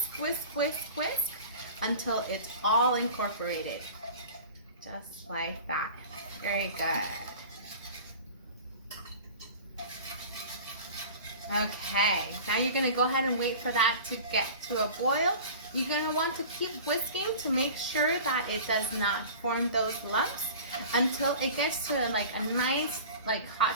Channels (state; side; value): inverted; both; correlation -0.39